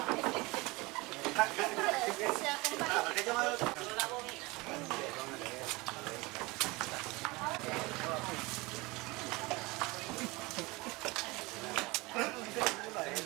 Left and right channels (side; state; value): left; quieter; 23.6 dB